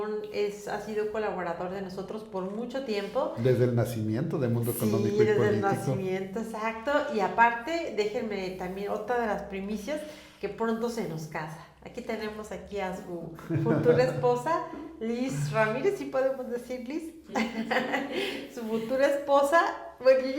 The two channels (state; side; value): identical; both; correlation 1.00